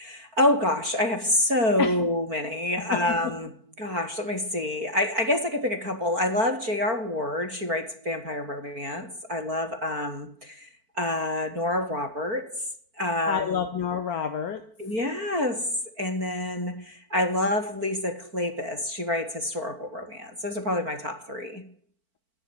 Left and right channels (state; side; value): late; left; 4.5 ms